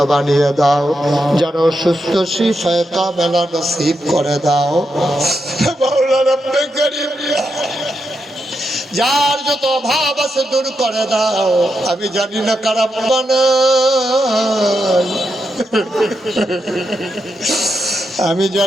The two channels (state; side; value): normal; both; correlation 0.84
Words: বানিয়ে দাও, যারা অসুস্থ শিফায়ে কামেলা নসিব করে দাও মাওলা রব্বে কারীম। যার যত অভাব আছে দূর করে দাও। আমি জানি না কার আব্বা নাই, আমি